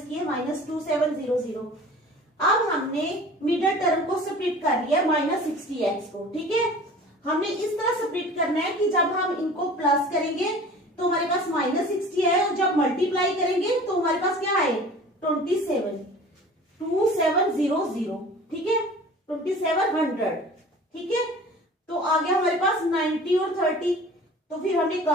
किए माइनस 2700। अब हमने मिडल टर्म को स्प्लिट कर लिया माइनस 60x को, ठीक है। हमने इस तरह स्प्लिट करना है कि जब हम इनको प्लस करेंगे तो हमारे पास माइनस 60 है, और जब मल्टीप्लाई करेंगे तो हमारे पास क्या है 2700, ठीक है, 2700, ठीक है। तो आ गया हमारे पास 90 और 30, तो फिर हमने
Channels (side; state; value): both; normal; correlation 0.43